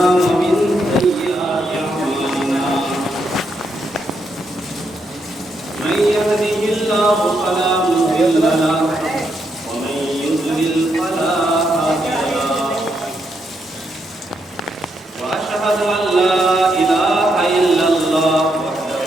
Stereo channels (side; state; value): both; normal; correlation 0.79